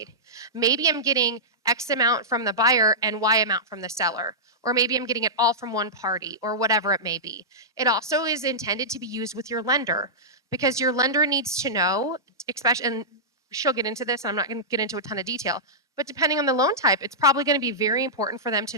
Maybe I'm getting X amount from the buyer and Y amount from the seller. Or maybe I'm getting it all from one party or whatever it may be. It also is intended to be used with your lender because your lender needs to know, especially, and she'll get into this, I'm not going to get into a ton of detail, but depending on the loan type, it's probably going to be very important for them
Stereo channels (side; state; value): both; normal; correlation -0.14